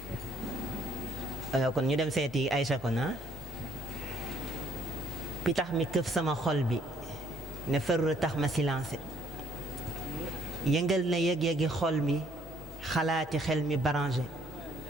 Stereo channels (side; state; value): both; normal; correlation 0.64